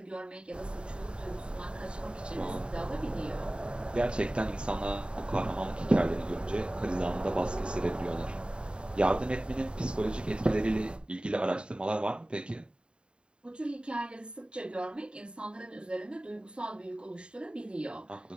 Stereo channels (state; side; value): late; left; 0.052 ms